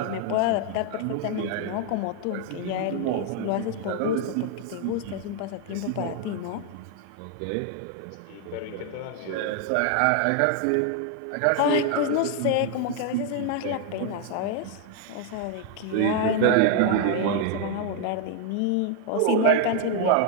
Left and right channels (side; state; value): both; different; correlation 0.00